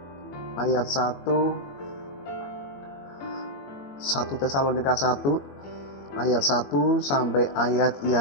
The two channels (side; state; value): right; late; 22 ms